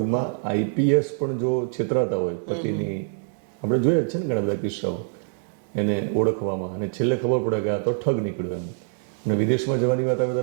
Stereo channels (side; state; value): left; silent; digital silence